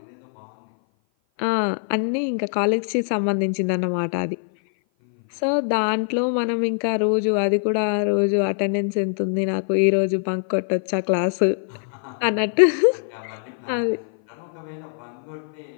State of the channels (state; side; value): silent; right; 56 dB below the other